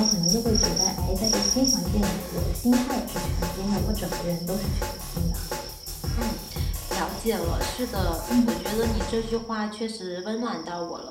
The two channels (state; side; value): identical; both; correlation 1.00